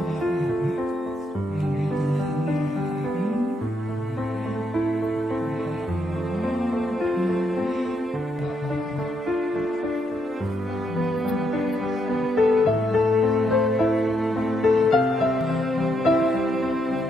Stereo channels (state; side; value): normal; both; correlation 0.78